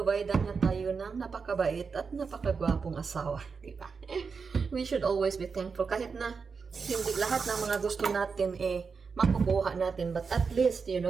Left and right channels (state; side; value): quieter; left; 5.3 dB